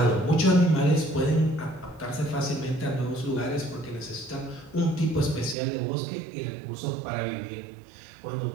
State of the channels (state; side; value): drops out; left; at 5.6 s